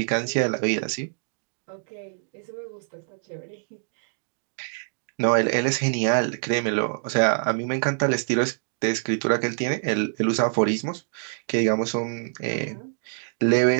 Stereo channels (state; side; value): silent; left; digital silence